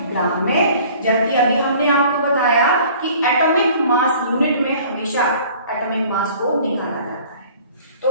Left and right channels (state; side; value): inverted; both; correlation -0.50